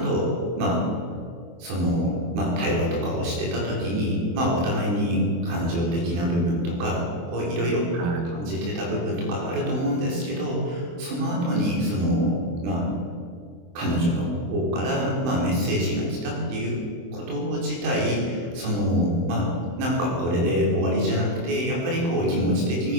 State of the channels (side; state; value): left; late; 23 ms